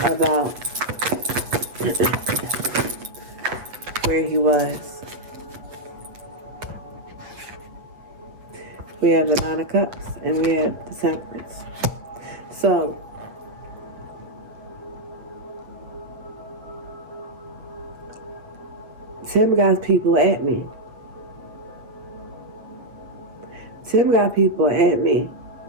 about where he was? We have the Nine of Cups and we have the Temperance. So, Tim got people at me. Tim got people at me.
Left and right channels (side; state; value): left; late; 8.0 ms